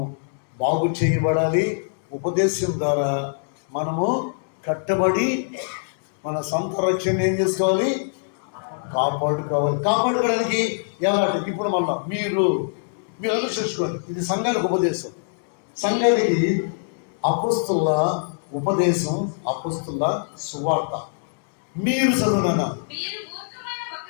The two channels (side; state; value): right; silent; digital silence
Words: బాగు చేయబడాలి. ఉపదేశం ద్వారా మనము కట్టబడి మన సొంత రక్షణ ఏం చేసుకోవాలి? కాపాడుకోవడానికి ఎలాంటి? ఇప్పుడు మళ్ళా మీరు అనుసరించుకోండి. ఇది సంఘానికి ఉపదేశం. సంఘానికి అపొస్తలుల ఉపదేశం, అపొస్తలుల సువార్త. మీరు చదువునా?